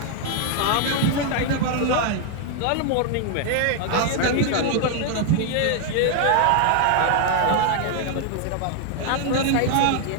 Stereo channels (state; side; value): different; both; correlation 0.00